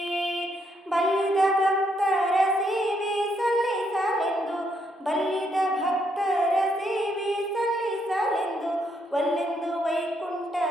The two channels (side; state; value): both; normal; correlation 0.75